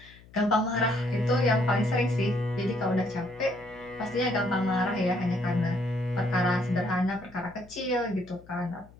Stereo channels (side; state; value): left; noise; hum, 23 dB below the sound